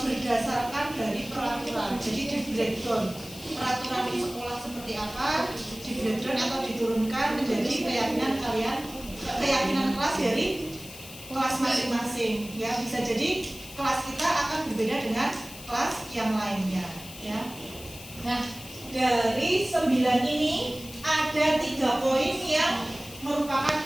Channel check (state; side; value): noise; left; hiss, 15 dB below the sound